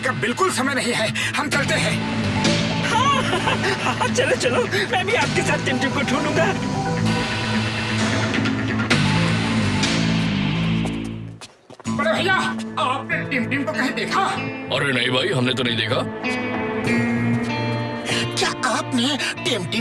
का बिल्कुल समय नहीं है, हम चलते हैं। हाँ, चलो चलो, मैं भी आपके साथ टिम को ढूंढूंगा। बड़े भैया, आपने टिम को कहीं देखा? अरे नहीं भाई, हमने तो नहीं देखा। क्या आपने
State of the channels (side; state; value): both; identical; correlation 1.00